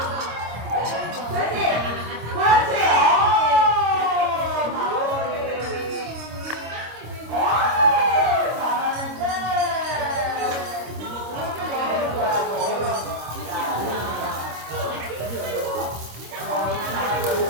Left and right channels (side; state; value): left; late; 26 ms